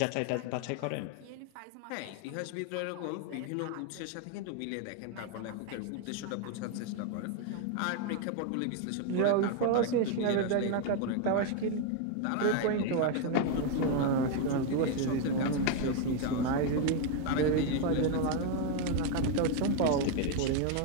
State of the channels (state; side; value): different; both; correlation 0.01